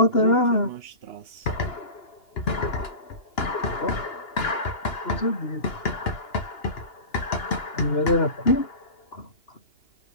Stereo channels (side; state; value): right; late; 2.9 ms